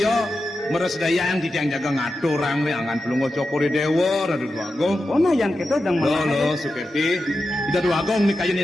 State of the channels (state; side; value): normal; both; correlation 0.90